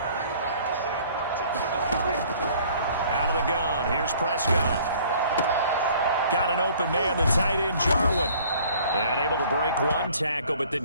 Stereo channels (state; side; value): inverted; both; correlation -0.54